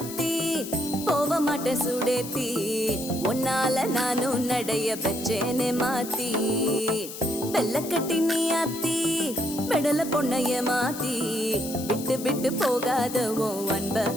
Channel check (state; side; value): noise; left; hiss, 11 dB below the sound